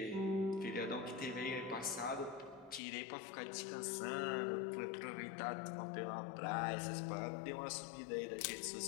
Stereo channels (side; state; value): right; drops out; at 2.8 s